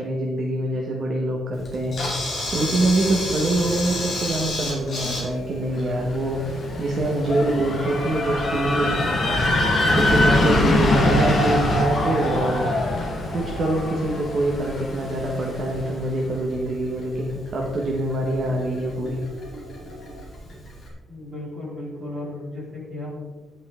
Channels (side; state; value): both; normal; correlation 0.76